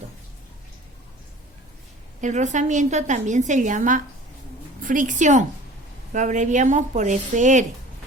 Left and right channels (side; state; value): both; normal; correlation 0.44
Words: El rozamiento también se llama fricción, lo abreviamos por FR.